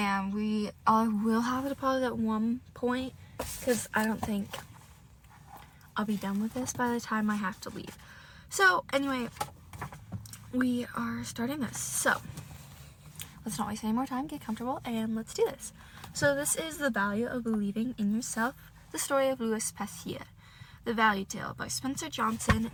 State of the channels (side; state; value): both; identical; correlation 1.00